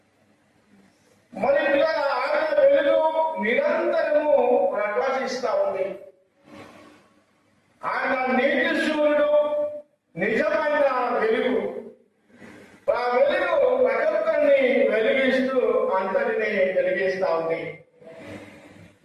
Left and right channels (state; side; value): identical; both; correlation 1.00